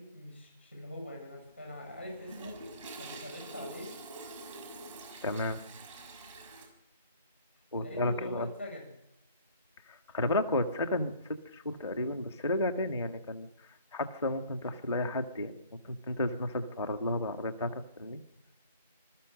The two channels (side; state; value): both; inverted; correlation -0.51